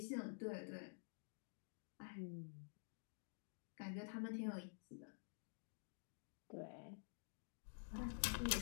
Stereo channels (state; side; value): silent; right; digital silence